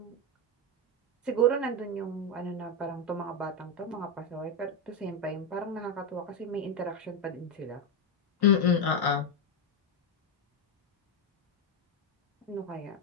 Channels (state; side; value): normal; both; correlation 0.08